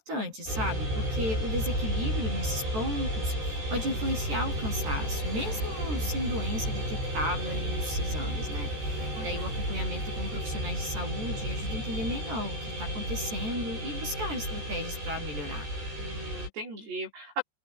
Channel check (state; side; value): late; left; 14 ms